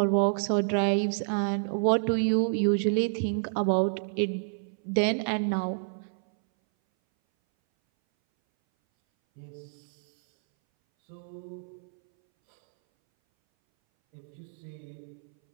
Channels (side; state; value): left; silent; 59 dB below the other